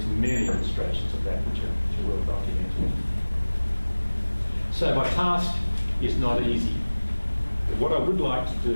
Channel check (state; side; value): inverted; both; correlation -1.00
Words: many illustrations of that which are well documented. So my task is not easy. But what I would like to